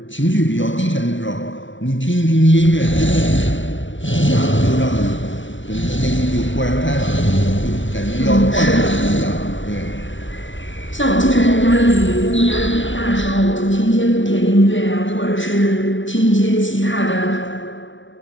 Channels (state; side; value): late; right; 0.56 ms